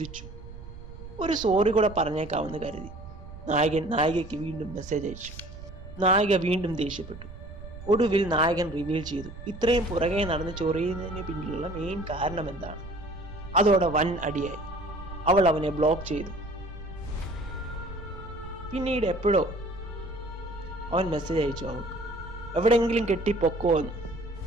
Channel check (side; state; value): right; noise; rumble, 14 dB below the sound